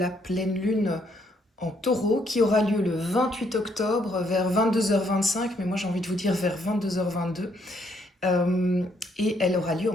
pleine lune en taureau qui aura lieu le 28 octobre vers 22h25, mais moi j'ai envie de vous dire vers 22h22. Et elle aura lieu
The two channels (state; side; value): normal; both; correlation 0.71